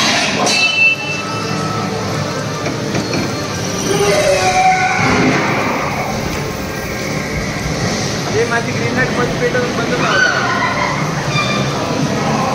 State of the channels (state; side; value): identical; both; correlation 1.00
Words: माझी ग्रीन लाईट बंद पेटवून बंद नव्हता.